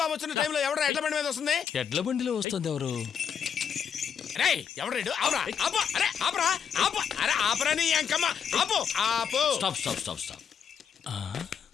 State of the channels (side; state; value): right; quieter; 7.6 dB